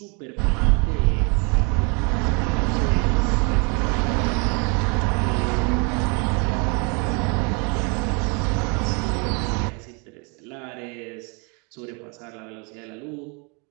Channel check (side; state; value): left; quieter; 33.5 dB